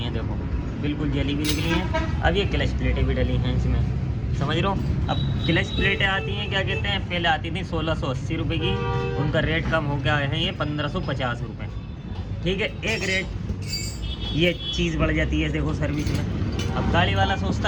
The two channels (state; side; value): identical; both; correlation 1.00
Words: हैं, देखो बिल्कुल जली भी निकली हैं। अब ये क्लच प्लेटें भी डली हैं इसमें, समझ रहे हो। अब क्लच प्लेटें आती हैं, क्या कहते हैं, पहले आती थी 1680 रुपये की, उनका रेट कम हो गया है ये 1550 रुपये, ठीक है। एक रेट ये चीज़ बढ़ जाती है देखो सर्विस में। अब गाड़ी वाला